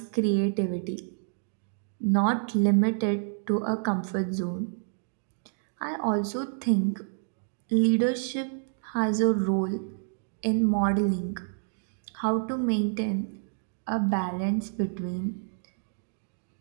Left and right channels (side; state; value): left; silent; digital silence